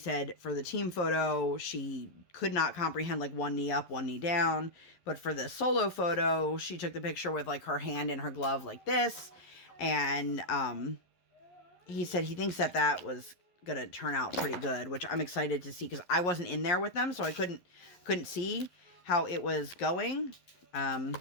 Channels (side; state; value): right; late; 11 ms